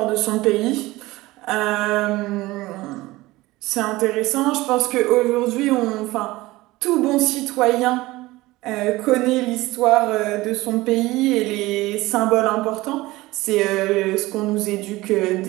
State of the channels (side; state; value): left; quieter; 19.3 dB